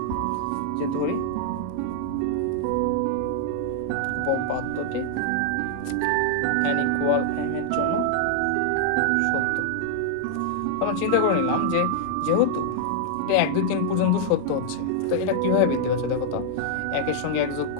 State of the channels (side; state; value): both; different; correlation -0.01